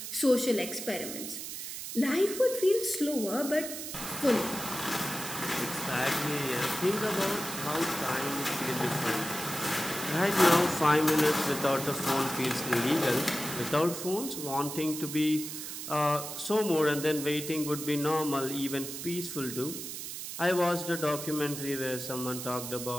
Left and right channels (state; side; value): noise; right; hiss, 7 dB below the sound